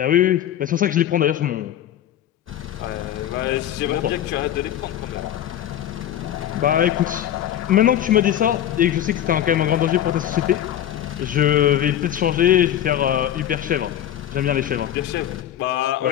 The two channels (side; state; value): right; quieter; 11.1 dB